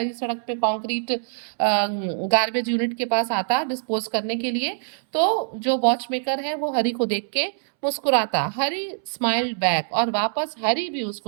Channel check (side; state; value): left; silent; 63 dB below the other